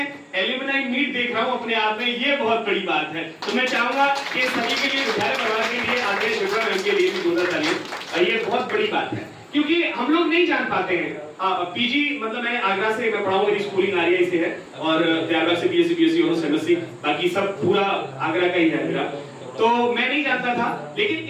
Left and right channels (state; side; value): identical; both; correlation 1.00